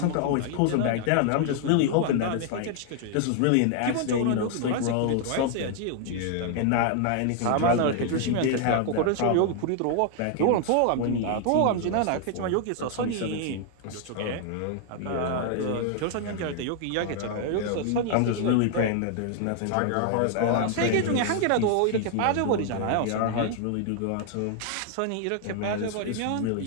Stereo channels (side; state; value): both; different; correlation 0.00